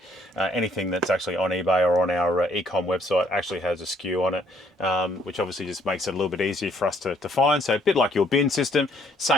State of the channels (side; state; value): both; normal; correlation 0.66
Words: anything that's actually on eBay or on our e-com website actually has a SKU on it, which obviously just makes it a little bit easier for us to find. So a bit like your bin system,